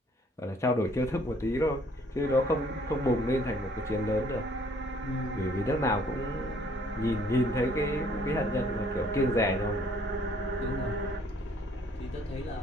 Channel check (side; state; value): both; normal; correlation 0.61